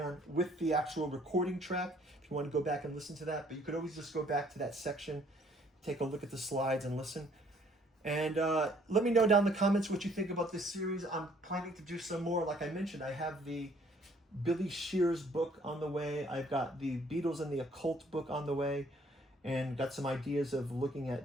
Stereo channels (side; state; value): both; normal; correlation 0.61